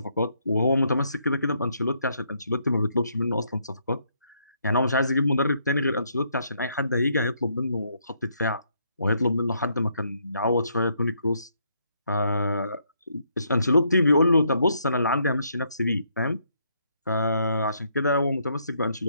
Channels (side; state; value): both; inverted; correlation -0.73